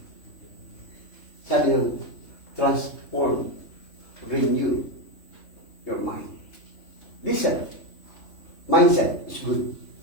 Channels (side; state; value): right; late; 3.2 ms